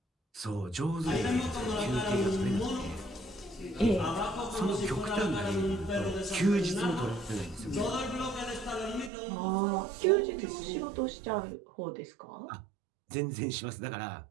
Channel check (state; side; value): drops out; left; at 9.1 s